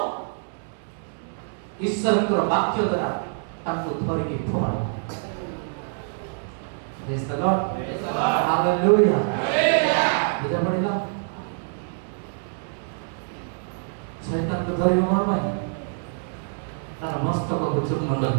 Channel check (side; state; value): left; silent; digital silence